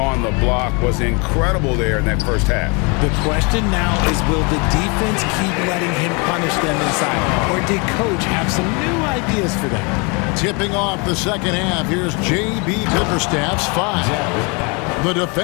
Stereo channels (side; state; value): right; quieter; 31.2 dB